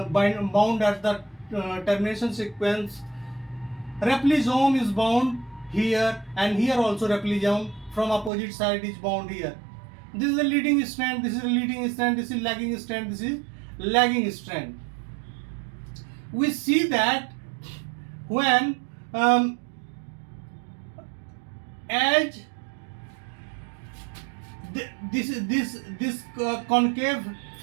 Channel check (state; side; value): drops out; left; at 8.3 s